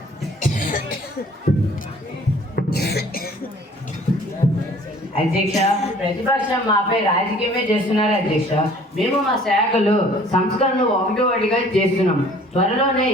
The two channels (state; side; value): normal; both; correlation 0.53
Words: అధ్యక్ష, ప్రతిపక్షం మాపై రాజకీయమే చేస్తున్నారు అధ్యక్ష. మేము మా శాఖలో సంస్కరణలు ఒకటిగా చేస్తున్నాం. త్వరలోనే